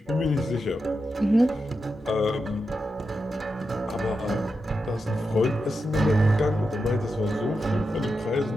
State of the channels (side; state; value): both; normal; correlation 0.88